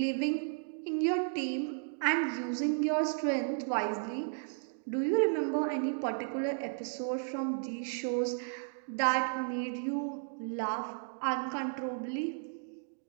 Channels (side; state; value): left; silent; digital silence